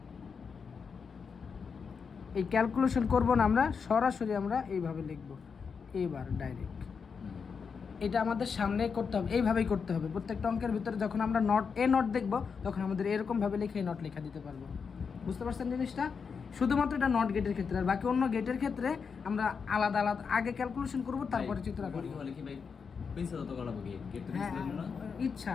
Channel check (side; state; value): right; quieter; 5.8 dB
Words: এই ক্যালকুলেশন করব না আমরা, সরাসরি আমরা এইভাবে লিখব, এবার ডাইরেক্ট। এটা আমাদের সামনে করতে হবে, এইভাবেই করতে হবে। প্রত্যেকটা অঙ্কের ভিতরে যখন আমরা নট দেখব তখন আমাদের এরকমভাবে লিখে নট লেখা দিতে পারবো। বুঝতে পারছেন জিনিসটা? শুধুমাত্র এটা নট গেটের ক্ষেত্রে, আর বাকি অন্য গেটের ক্ষেত্রে আমরা আলাদা আলাদা আগে ক্যালকুলেশন করব, তারপরে চিত্র আঁকবো। বলে কি ভাই পেন্সিল তো করাবো কি গেট তো হ্যাঁ, পেন্সিল না ইচ্ছা